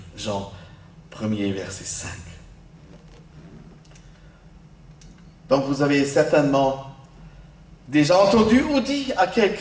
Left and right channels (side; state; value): both; identical; correlation 1.00